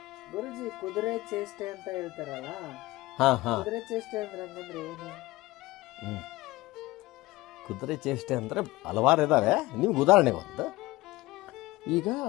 ಗುರುಜಿ, ಕುದುರೆ ಚೇಷ್ಟೆ ಅಂತ ಹೇಳ್ತಾರಲ್ಲ, ಕುದುರೆ ಚೇಷ್ಟೆ ಅಂದ್ರೆ ಏನು? ಕುದುರೆ ಚೇಷ್ಟೆ ಅಂದ್ರೆ ಹಲವಾರು ಇದಾವೆ. ನಿಮ್ಗೆ ಉದಾಹರಣೆ ಒಂದು, ಈಗ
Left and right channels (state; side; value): quieter; right; 19.6 dB